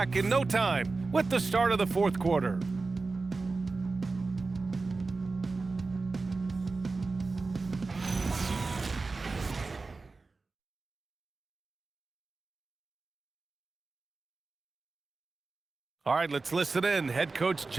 in no time with the start of the 4th quarter. All right, let's listen in. Head coach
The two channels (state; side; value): quieter; left; 3.9 dB